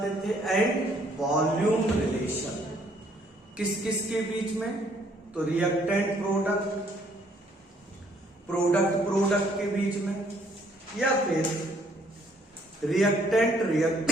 थे एंड वॉल्यूम रिलेशन। किस किस के बीच में? तो रिएक्टेंट प्रोडक्ट, प्रोडक्ट प्रोडक्ट के बीच में, या फिर रिएक्टेंट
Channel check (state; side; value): normal; both; correlation 0.65